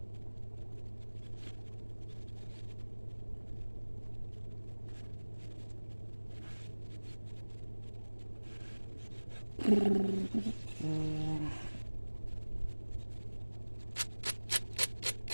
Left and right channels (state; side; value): inverted; both; correlation -1.00